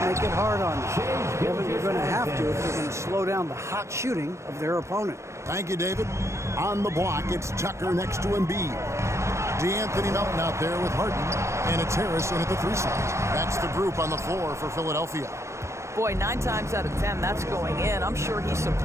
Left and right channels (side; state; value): left; late; 0.14 ms